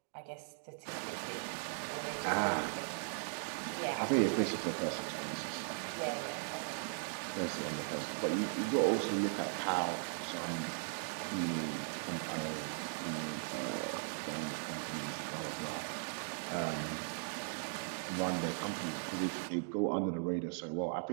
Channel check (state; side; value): silent; left; 52 dB below the other